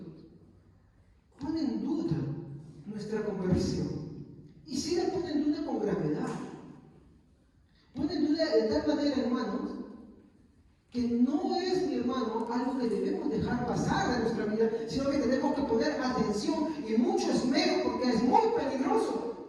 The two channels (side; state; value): both; identical; correlation 1.00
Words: pone en duda nuestra conversión. Y si la pone en duda con gravedad. Pone en duda de tal manera, hermanos, que no es, mi hermano, algo que debemos dejar pasar de nuestra vida, sino que tenemos que poner atención y mucho esmero, porque es muy peligroso.